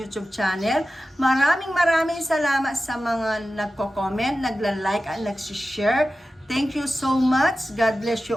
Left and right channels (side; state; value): both; normal; correlation 0.94